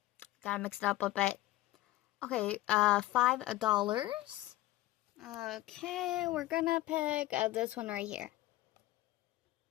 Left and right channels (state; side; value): quieter; right; 16.9 dB